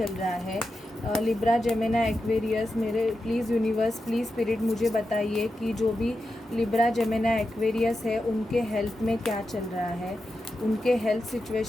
रहा है। लिब्रा जेमिनी एक्वेरियस मेरे प्लीज़ यूनिवर्स प्लीज़ स्पिरिट मुझे बताइए कि जो भी लिब्रा जेमिनी एक्वेरियस है उनके हेल्थ में क्या चल रहा है, उनके हेल्थ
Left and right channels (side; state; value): both; normal; correlation 0.90